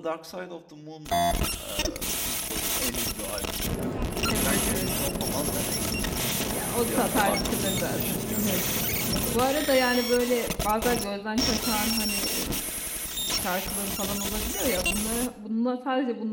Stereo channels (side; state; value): both; identical; correlation 1.00